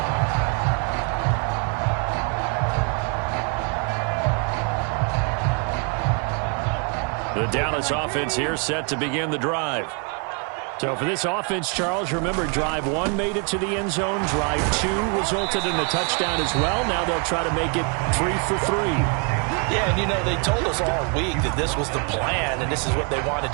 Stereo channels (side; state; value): left; quieter; 36.0 dB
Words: The Dallas offense here set to begin the drive. So for this offense, Charles, remember, drive 1 made it to the end zone. Drive 2 resulted in a touchdown as well. Now they'll try to make it 3 for 3. Yeah, and you know, they told us all week that this was the plan and this is what they wanted